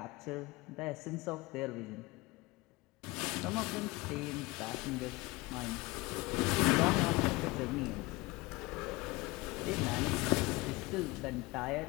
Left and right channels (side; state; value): right; quieter; 22.4 dB